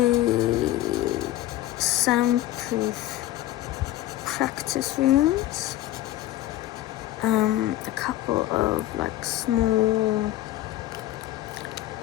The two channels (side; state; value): right; quieter; 14.6 dB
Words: soundproof practice rooms. A couple of like small